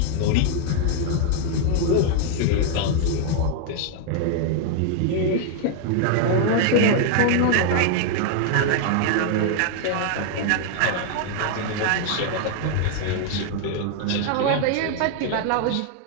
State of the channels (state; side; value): different; both; correlation 0.00